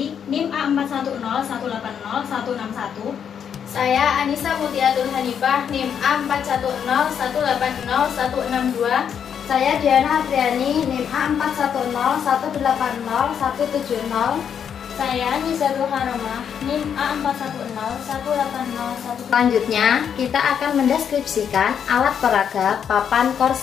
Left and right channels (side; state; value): right; quieter; 8.0 dB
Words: NIM A410180-161. Saya Anissa Mutiatul Hanifah, NIM A410180-162. Saya Diana Apriani, NIM A410180-170. Saya Nizatul Haromah, NIM A410180-1. Selanjutnya, kita akan mendeskripsikan alat peraga papan